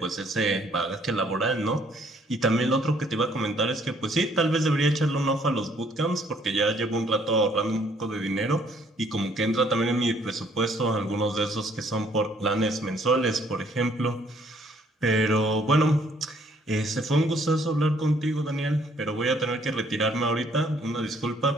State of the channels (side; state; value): both; normal; correlation 0.64